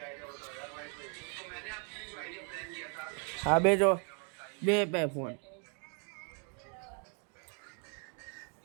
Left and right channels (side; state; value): left; quieter; 39.3 dB